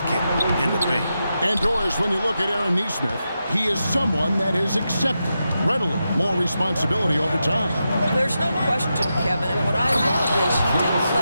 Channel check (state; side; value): inverted; both; correlation -0.88